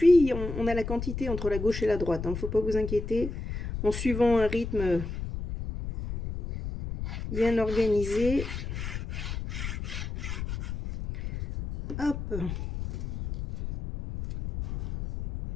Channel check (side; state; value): left; noise; rumble, 6 dB below the sound